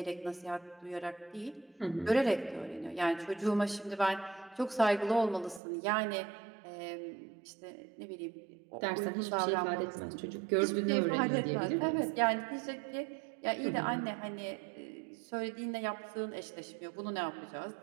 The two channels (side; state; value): left; drops out; at 5.6 s